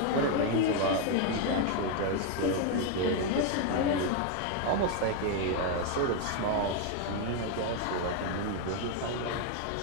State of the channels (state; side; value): different; both; correlation 0.01